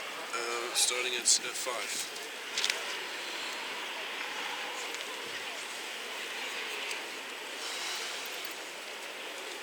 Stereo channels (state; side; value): identical; both; correlation 1.00